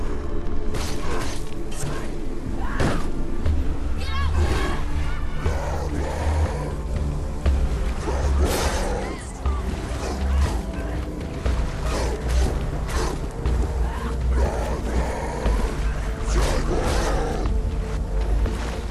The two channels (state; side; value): identical; both; correlation 1.00